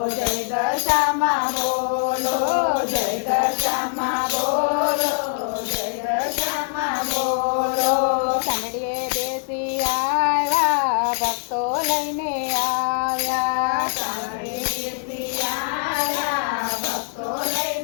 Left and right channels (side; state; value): right; silent; digital silence